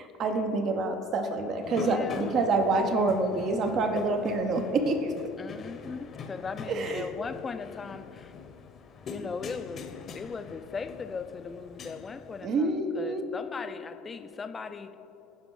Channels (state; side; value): normal; both; correlation 0.53